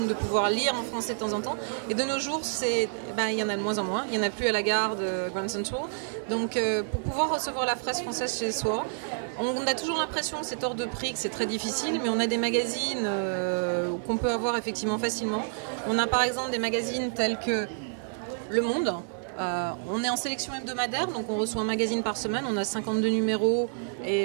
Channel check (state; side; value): silent; left; digital silence